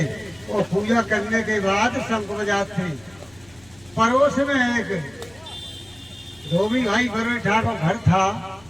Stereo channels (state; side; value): noise; left; hum, 27 dB below the sound